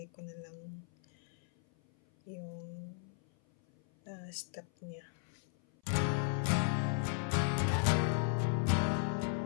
ko na lang yung step niya.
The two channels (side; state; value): right; silent; 54 dB below the other